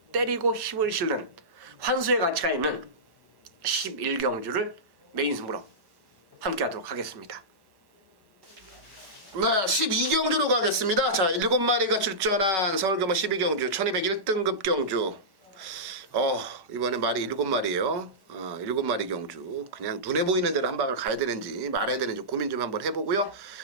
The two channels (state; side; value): late; left; 1.1 ms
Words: 때리고 힘을 실는 환수의 가치가 있는 11경주를 메인 승부로 함께 하도록 하겠습니다. 네, 12경주로 가겠습니다. 자, 7마리가 출전한 서울경마 12경주 1201등급 경주. 이번에 말이 7마리예요. 7마리 경주. 그냥 눈에 보이는 대로 한 방을 가야 되는지 말아야 되는지 고민 좀 한번 해보고요.